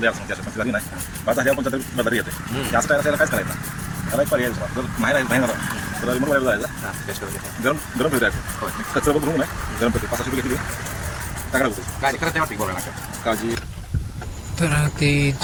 त्याच्या पण झाली नाही. आता ह्या पण बदल येते. जास्त टायर त्याला कायच करायचं त्याला एक पर्याय जर नाही राहिला तर रिमोट वायर जायचं, गरम गरम फिरू द्यायचं. कचरा बघून नाही गरम फिरते 500 रुपये घेतली टाकला होतो काय करत वाटते बोलायला काळजी. तर ते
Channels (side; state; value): both; identical; correlation 1.00